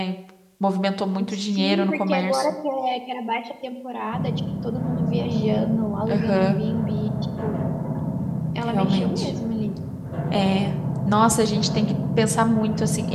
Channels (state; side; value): identical; both; correlation 1.00